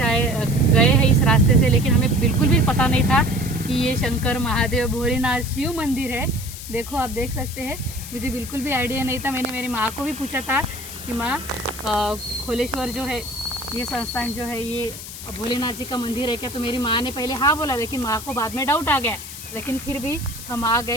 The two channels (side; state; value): left; noise; hiss, 11 dB below the sound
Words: हैं इस रास्ते से, लेकिन हमें बिल्कुल भी पता नहीं था कि ये शंकर महादेव भोलेनाथ शिव मंदिर है। देखो, आप देख सकते हैं, मुझे बिल्कुल भी आइडिया नहीं था। मैंने मेरी माँ को भी पूछा था कि माँ, खोलेश्वर जो है, ये संस्थान जो है, ये भोलेनाथ जी का मंदिर है क्या? तो मेरी माँ ने पहले हाँ बोला, लेकिन माँ को बाद में डाउट आ गया। लेकिन फिर भी हम आ